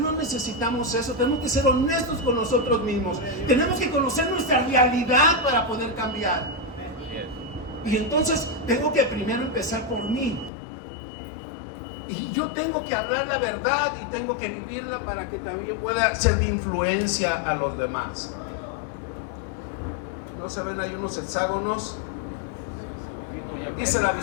necesitamos eso. Tenemos que ser honestos con nosotros mismos. Tenemos que conocer nuestra realidad para poder cambiar. Y entonces tengo que primero empezar por mí. Y yo tengo que hablar la verdad y tengo que vivirla para que también pueda ser de influencia a los demás. ¿No se ven ahí unos hexágonos? Dice la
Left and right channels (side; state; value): right; drops out; at 10.5 s